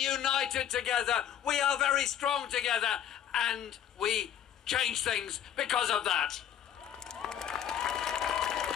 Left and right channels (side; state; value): right; quieter; 9.8 dB